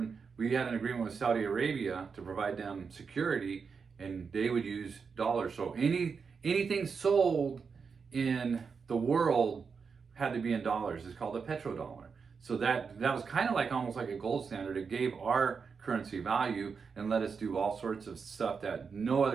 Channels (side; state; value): left; quieter; 5.6 dB